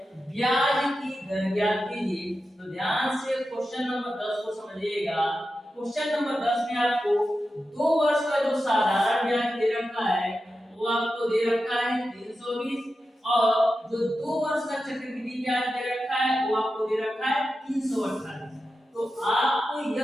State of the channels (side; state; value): both; normal; correlation 0.91